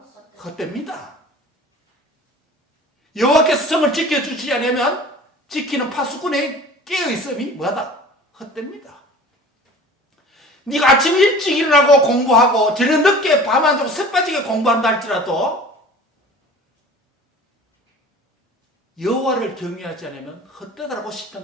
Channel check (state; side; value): normal; both; correlation 0.43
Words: 헛됩니다. 여호와께서 성을 지켜주지 않으면 지키는 파수꾼의 깨어있음이 뭐하다? 헛됩니다. 네가 아침 일찍 일어나고 공부하고 저녁 늦게 밤 안 자고 새빠지게 공부한다 할지라도 여호와를 경외하지 않으면 헛되다라고